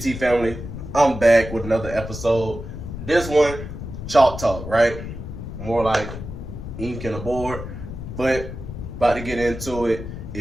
family? I'm back with another episode. This one, chalk talk, right? More like ink and a board, but about to get into it.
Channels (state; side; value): noise; left; rumble, 9 dB below the sound